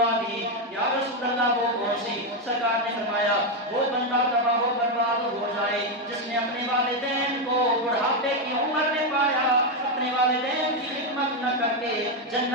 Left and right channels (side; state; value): both; normal; correlation 0.05